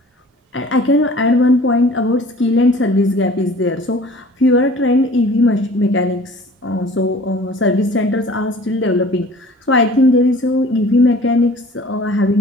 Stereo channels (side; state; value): both; normal; correlation 0.47